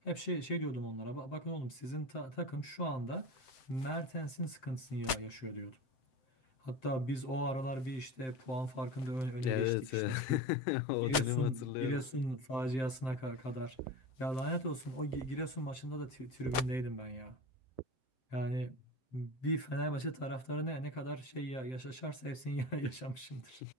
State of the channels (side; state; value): right; late; 7.8 ms